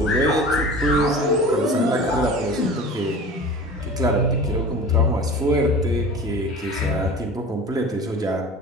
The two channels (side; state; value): both; normal; correlation 0.37